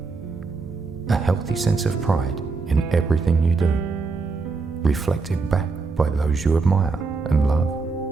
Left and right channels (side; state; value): left; quieter; 4.3 dB